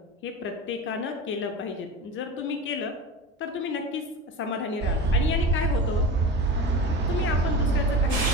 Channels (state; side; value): normal; both; correlation 0.29